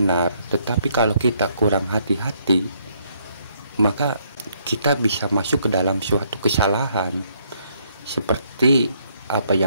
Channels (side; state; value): both; inverted; correlation -0.70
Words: tetapi kalau kita kurang hati-hati, maka kita bisa masuk ke dalam suatu kesalahan. Seperti apa